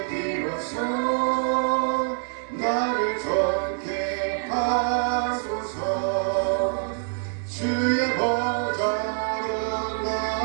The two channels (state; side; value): silent; left; 61 dB below the other